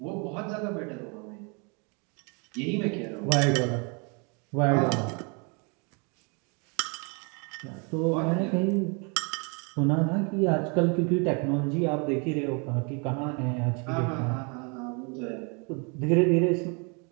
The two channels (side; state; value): left; quieter; 33.9 dB